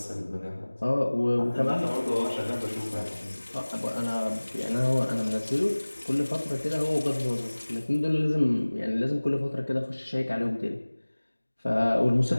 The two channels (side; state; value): both; inverted; correlation -1.00